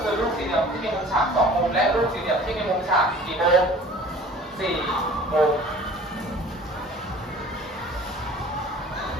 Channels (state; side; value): normal; both; correlation 0.47